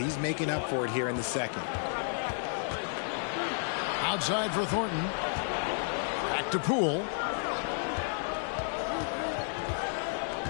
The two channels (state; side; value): silent; right; 57 dB below the other